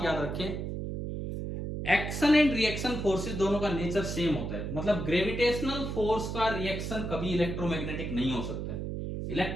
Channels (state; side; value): noise; right; hum, 4 dB below the sound